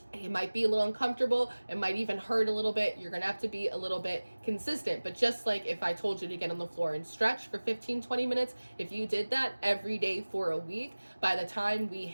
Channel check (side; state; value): both; inverted; correlation -1.00